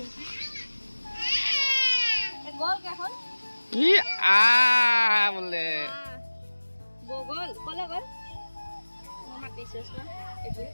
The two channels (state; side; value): inverted; both; correlation -1.00